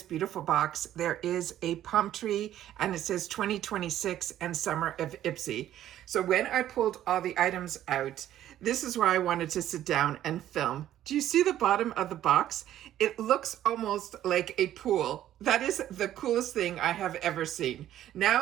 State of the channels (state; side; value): quieter; left; 12.2 dB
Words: beautiful box, there is a palm tree, and it says 2026 and Summer of Ipsy. So when I pulled all the items out, this is where I wanted to sit down and film. Do you see the bottom of the box? It looks almost like a pool. That is the coolest thing I have ever seen.